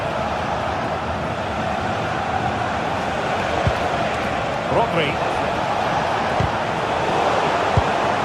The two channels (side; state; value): both; identical; correlation 1.00